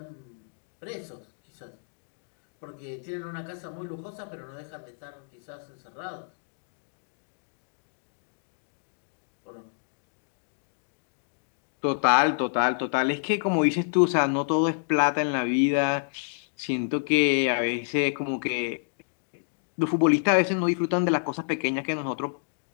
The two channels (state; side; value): silent; right; digital silence